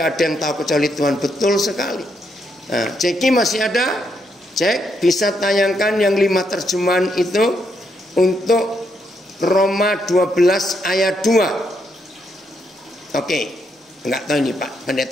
ada yang tahu kecuali Tuhan. Betul sekali. Nah, Ceki masih ada? Cek, bisa tayangkan yang 5 terjemahan itu untuk Roma 12 ayat 2. Oke, enggak tahu ini Pak,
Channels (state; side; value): normal; both; correlation 0.78